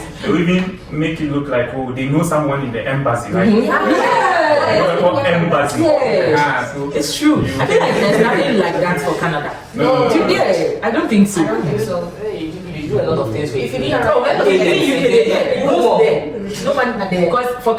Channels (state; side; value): identical; both; correlation 1.00